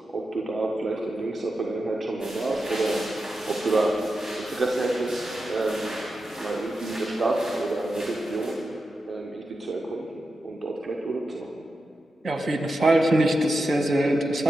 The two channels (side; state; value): both; normal; correlation 0.89